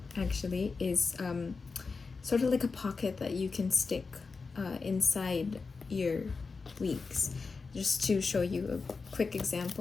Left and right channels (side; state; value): right; quieter; 4.5 dB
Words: actually is sort of like a pocket that you can stick inside your weeks. Just to show you a quick